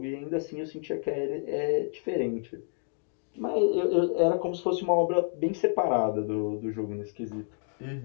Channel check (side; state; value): right; silent; 58 dB below the other